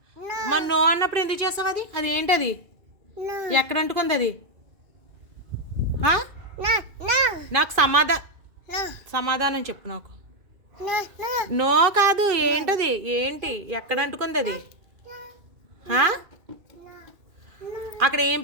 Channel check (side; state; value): left; late; 2.4 ms